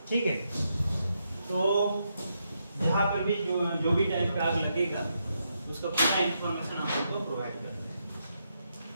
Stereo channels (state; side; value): inverted; both; correlation -0.81